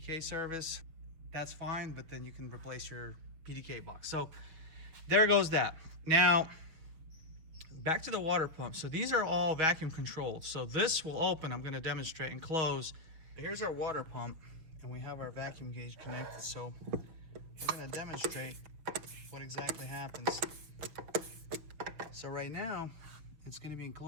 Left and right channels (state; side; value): late; left; 6.3 ms